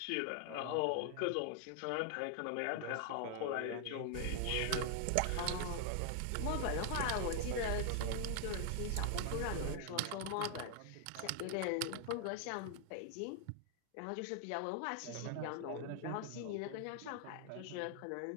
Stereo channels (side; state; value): both; different; correlation 0.00